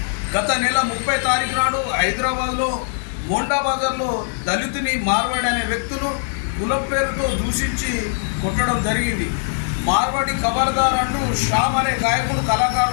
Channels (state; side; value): silent; right; digital silence